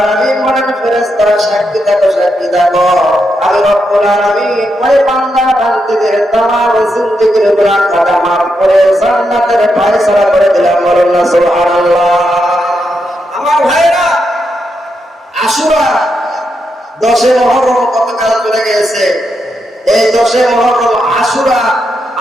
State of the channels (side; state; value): both; normal; correlation 0.83